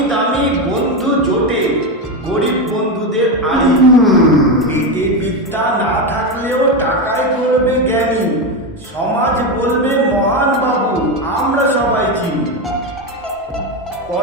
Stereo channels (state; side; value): normal; both; correlation 0.12